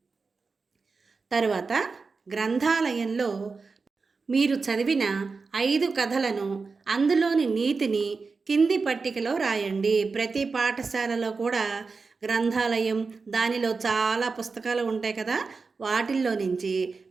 తరువాత గ్రంథాలయంలో మీరు చదివిన 5 కథలను, అందులోని నీతిని కింది పట్టికలో రాయండి. ప్రతి పాఠశాలలో కూడా గ్రంథాలయం, దానిలో చాలా పుస్తకాలు ఉంటాయి కదా, వాటిల్లో నుంచి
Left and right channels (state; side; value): quieter; left; 4.5 dB